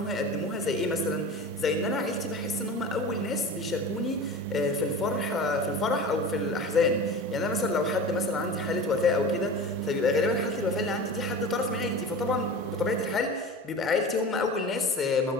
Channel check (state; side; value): normal; both; correlation 0.33